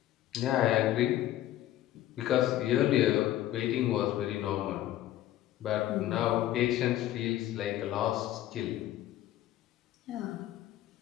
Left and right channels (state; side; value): quieter; right; 13.5 dB